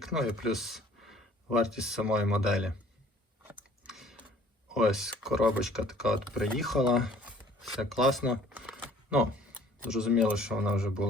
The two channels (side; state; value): both; normal; correlation 0.55